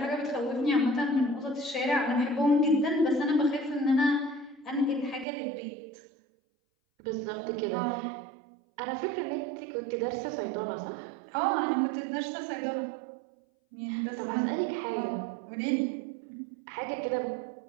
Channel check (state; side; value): drops out; left; at 5.2 s